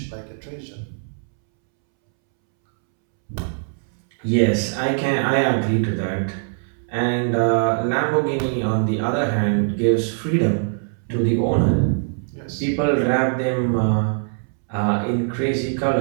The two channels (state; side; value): silent; left; 64 dB below the other